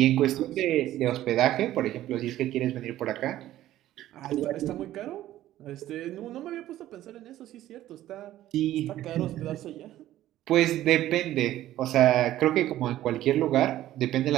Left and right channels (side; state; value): left; quieter; 13.8 dB